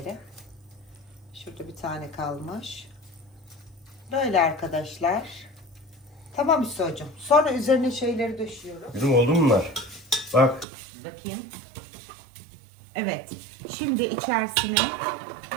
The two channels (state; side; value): drops out; left; at 10.7 s